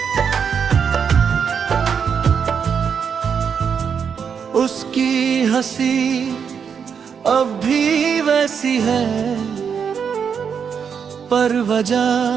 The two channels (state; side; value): quieter; left; 6.9 dB